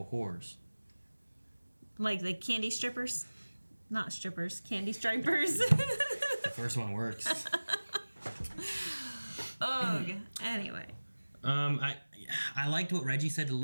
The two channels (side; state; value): both; inverted; correlation -1.00